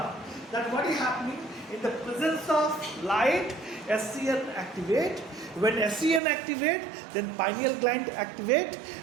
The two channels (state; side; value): drops out; left; at 6.2 s